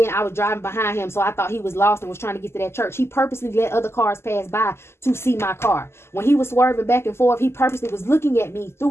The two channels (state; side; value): late; right; 0.12 ms